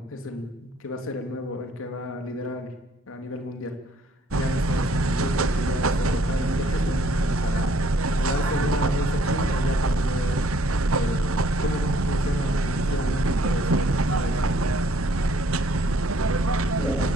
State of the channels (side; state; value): both; normal; correlation 0.63